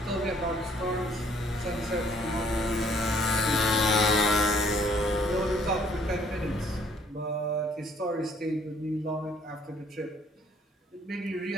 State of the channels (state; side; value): normal; both; correlation 0.61